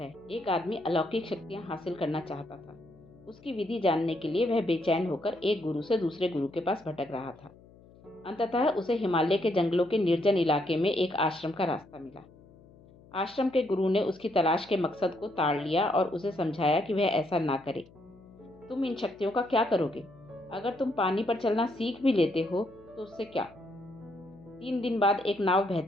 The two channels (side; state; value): left; noise; hum, 24 dB below the sound